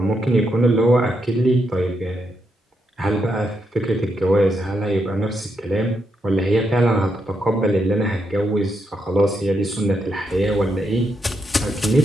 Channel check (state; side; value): normal; both; correlation 0.81